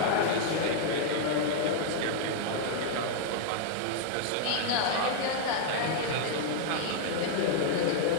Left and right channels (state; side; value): different; both; correlation -0.01